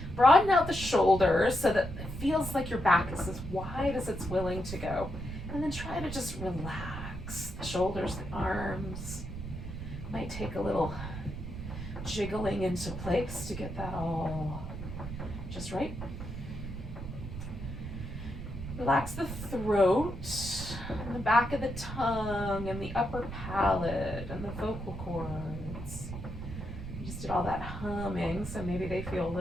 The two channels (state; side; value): noise; right; rumble, 8 dB below the sound